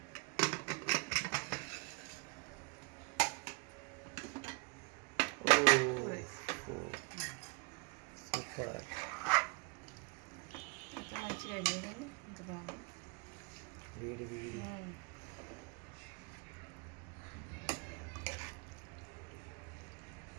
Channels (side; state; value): left; quieter; 31.6 dB